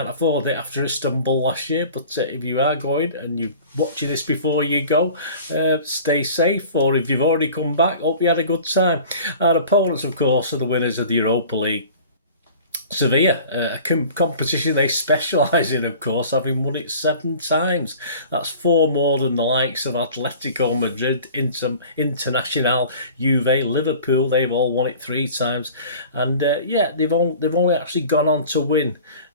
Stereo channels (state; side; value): inverted; both; correlation -0.44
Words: afford it after Istanbul last year. But if you are going and you're watching this before you go, stay safe. Or if you've already come back, hope you had a good time. Our opponents, of course, are the winners of the Europa League. Sevilla, a competition they specialise in, of course, having won it 7 times. That's 4 more than the likes of Atletico Madrid, Internacional, Juve, Liverpool. They've all won it 3 times, and yeah, they've only actually gone on to win